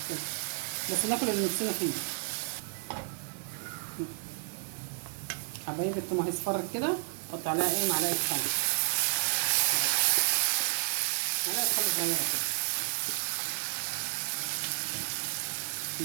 بس ناكل اللي نفسنا فيه. حبايبي التوم هيصفر كده، حط عليها ايه؟ معلقه خل. معلقه خل صغيره كده،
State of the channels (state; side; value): silent; left; digital silence